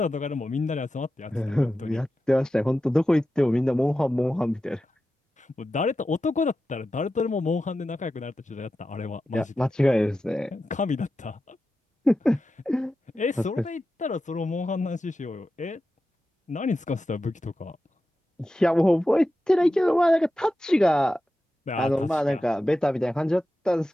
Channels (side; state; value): both; normal; correlation 0.91